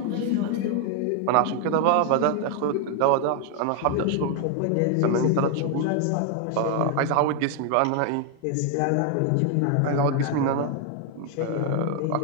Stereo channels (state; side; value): different; both; correlation 0.00